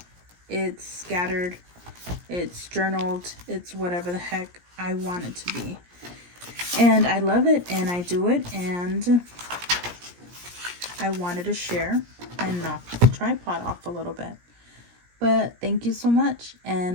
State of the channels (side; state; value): left; late; 17 ms